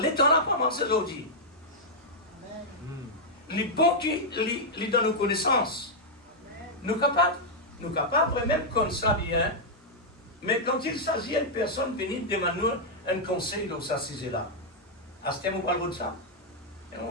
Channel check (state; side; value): normal; both; correlation -0.05